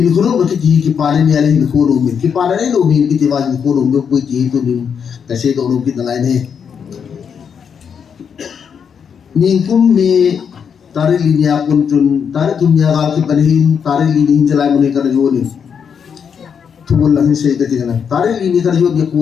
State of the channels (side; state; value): right; quieter; 7.1 dB